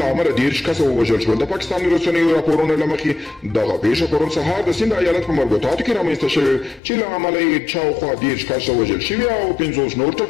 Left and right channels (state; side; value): drops out; right; at 6.8 s